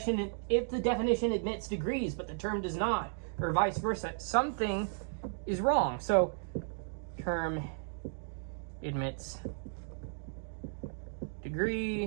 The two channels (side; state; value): left; silent; digital silence